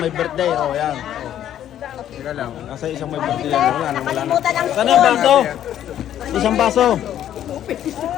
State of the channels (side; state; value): right; quieter; 11.1 dB